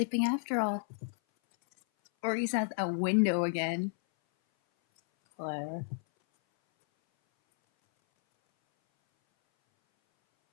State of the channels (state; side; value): silent; right; 57 dB below the other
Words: after all. Or he's at a window again. Claire.